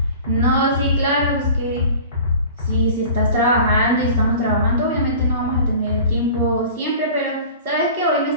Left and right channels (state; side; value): inverted; both; correlation -0.42